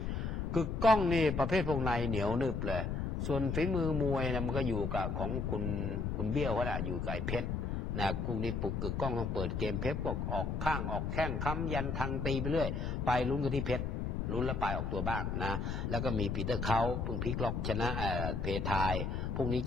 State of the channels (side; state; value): left; noise; rumble, 2 dB below the sound